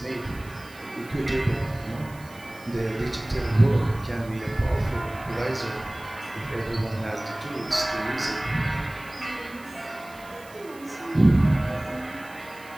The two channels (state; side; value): noise; right; hiss, 22 dB below the sound